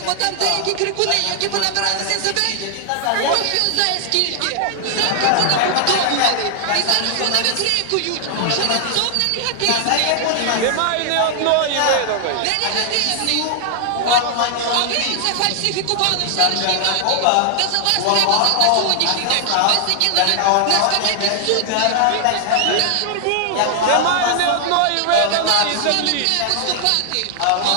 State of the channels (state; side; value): different; both; correlation 0.00